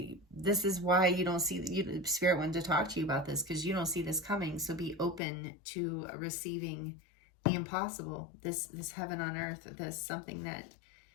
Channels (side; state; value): right; drops out; at 5.2 s